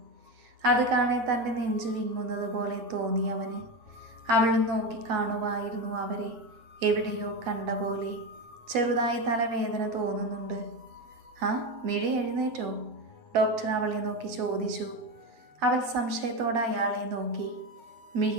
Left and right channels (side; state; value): left; late; 8.7 ms